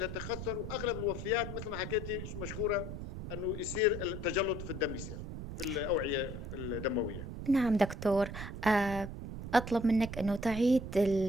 واغلب الوفيات مثل ما حكيتي مشكوره انه يصير التجلط في الدم، يصير في الاوعيه الدمويه. نعم دكتور. آه، أطلب منك أنه تعيد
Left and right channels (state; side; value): noise; right; rumble, 7 dB below the sound